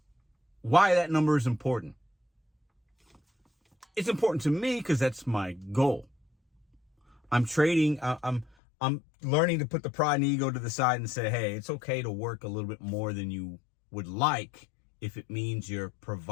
why that number is important? It's important to me because that's my goal. I'm trading. I'm learning to put the pride and ego to the side and say, hey, it's okay to work a little bit more than you would like if it means you're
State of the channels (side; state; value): right; drops out; at 8.5 s